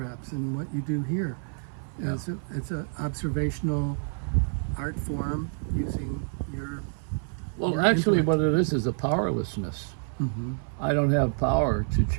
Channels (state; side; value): silent; left; 59 dB below the other